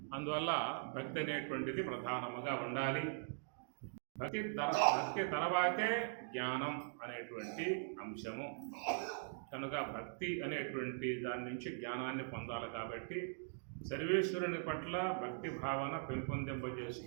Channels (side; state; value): left; silent; digital silence